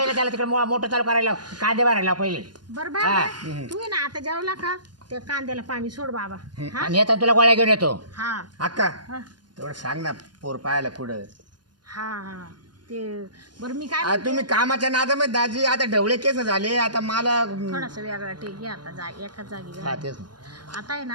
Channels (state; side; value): late; left; 0.70 ms